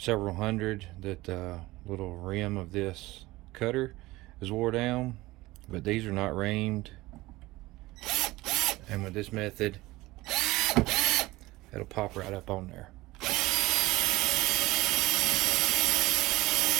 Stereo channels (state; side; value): quieter; left; 19.4 dB